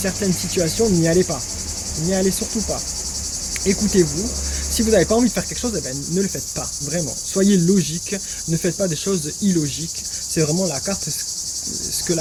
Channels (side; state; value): both; identical; correlation 1.00